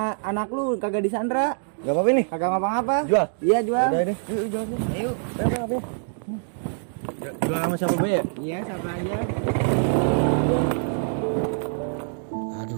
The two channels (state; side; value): silent; left; digital silence